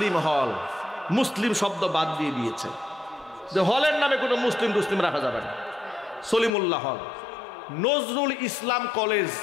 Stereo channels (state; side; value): drops out; right; at 6.5 s